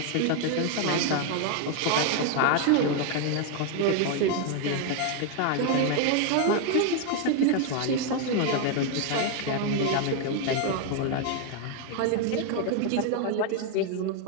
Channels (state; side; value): different; both; correlation 0.01